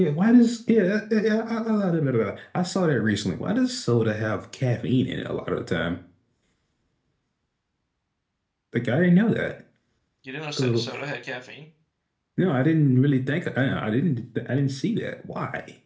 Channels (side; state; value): both; identical; correlation 1.00